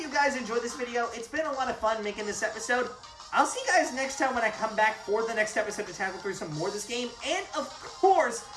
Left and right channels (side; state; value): both; identical; correlation 1.00